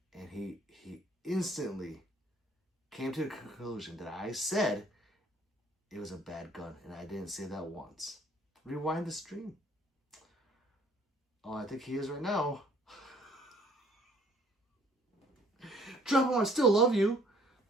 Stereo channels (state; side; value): normal; both; correlation 0.58